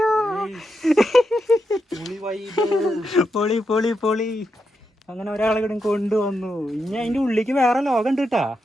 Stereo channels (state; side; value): normal; both; correlation 0.84